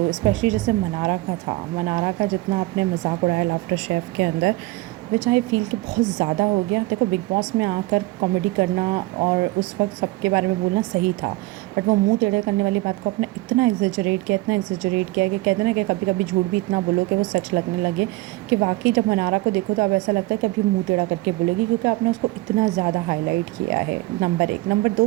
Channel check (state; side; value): quieter; left; 19.9 dB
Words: स्पेशली जैसे मनारा का था, मनारा का जितना आपने मजाक उड़ाया लाफ्टर शेफ़ के अंदर, विच आई फ़ील कि बहुत ज़्यादा हो गया। देखो बिग बॉस में आकर कॉमेडी करना और उस वक्त सबके बारे में बोलना सही था, बट वो मुंह टेढ़े करने वाली बात को आपने इतना एग्जेजरेट किया, इतना एग्जेजरेट किया कि कहते हैं ना कि कभी कभी झूठ भी इतना बोलो कि वो सच लगने लगे, कि वाकई जब मनारा को देखो तो अब ऐसा लगता है कि अभी मुंह टेढ़ा करके बोलेगी, क्योंकि आपने उसको इतना ज़्यादा हाईलाइट किया है। नंबर एक। नंबर